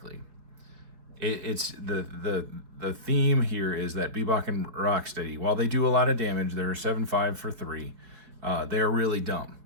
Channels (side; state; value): left; late; 4.7 ms